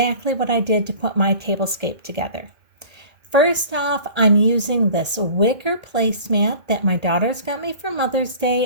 what I did to put my tablescape together. First off, I'm using this wicker placemat that my daughters got me for Mother's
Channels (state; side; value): late; left; 2.1 ms